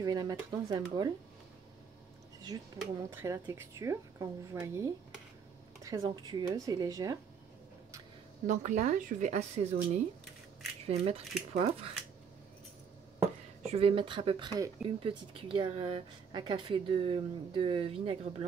vais la mettre dans un bol. C'est juste pour vous montrer la texture, quand vous voyez, très onctueuse et légère. Donc là, je vais assaisonner. Je vais mettre du poivre. Je vais mettre à peu près une petite cuillère à café de vinaigre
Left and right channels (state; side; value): quieter; left; 6.6 dB